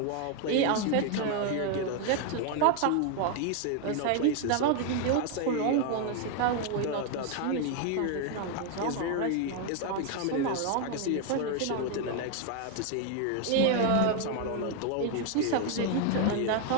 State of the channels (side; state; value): both; different; correlation 0.01